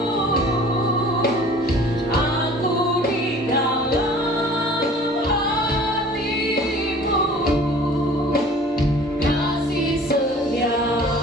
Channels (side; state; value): both; normal; correlation 0.48